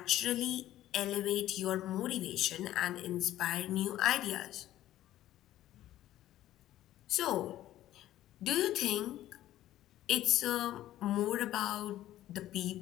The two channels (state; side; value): quieter; right; 13.7 dB